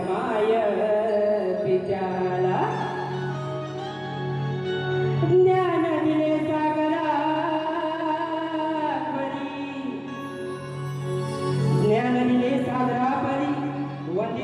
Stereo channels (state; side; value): identical; both; correlation 1.00